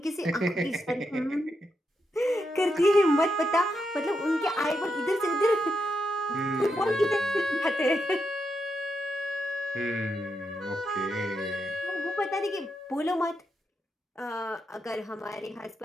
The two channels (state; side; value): normal; both; correlation 0.84